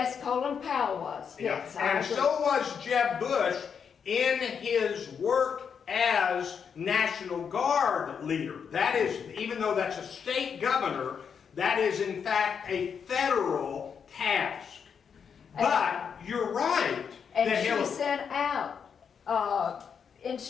Colin Powell was. Yes, I And agree. so was Jeb Bush in his work as National Guard leader. That is, even though that's a state governor, that is in fact a federal task. But you're right. And that she Hillary, sent out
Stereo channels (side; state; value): right; quieter; 6.8 dB